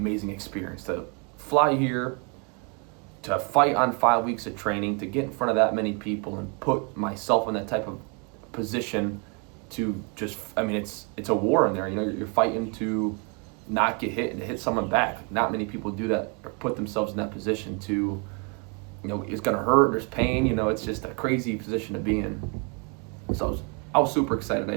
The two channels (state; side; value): quieter; left; 33.3 dB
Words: experience to fly here, to fight on 5 weeks of training, to get in front of that many people and put myself in that type of position to just, it's a war in there. You're fighting to not get hit and to hit someone back. Not many people do that or put themselves in that position to, it's going to hurt, there's pain, it's just a crazy position to be in. So I was super excited I